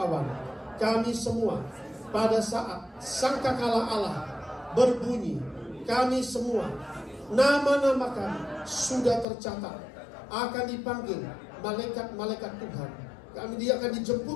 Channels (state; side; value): drops out; right; at 9.2 s